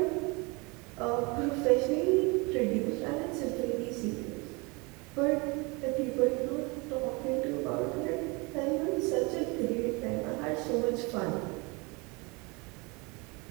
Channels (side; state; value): left; quieter; 27.9 dB